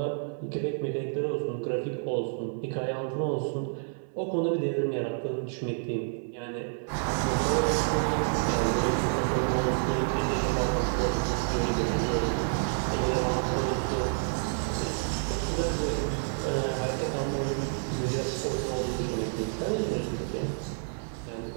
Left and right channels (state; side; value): silent; left; digital silence